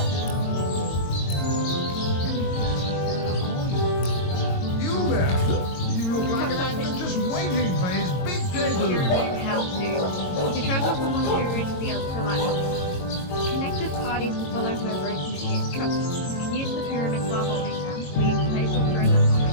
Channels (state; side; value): late; right; 22 ms